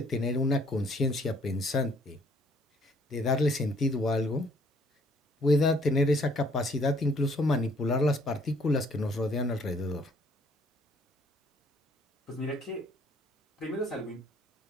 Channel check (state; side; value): normal; both; correlation 0.63